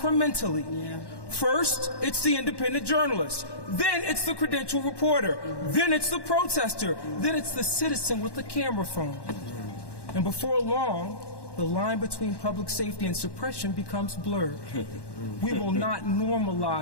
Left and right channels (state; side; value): late; right; 1.1 ms